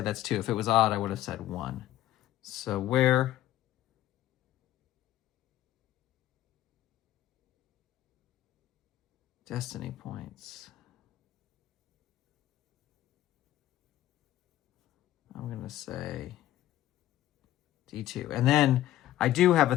that's 2. If it was odd, I would have said 1. So where... Destiny points. I'm going to say D2. And then I do have a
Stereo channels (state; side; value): quieter; right; 13.6 dB